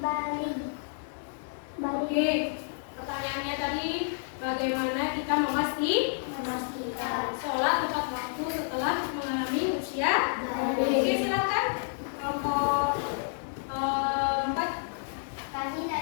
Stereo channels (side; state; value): right; silent; digital silence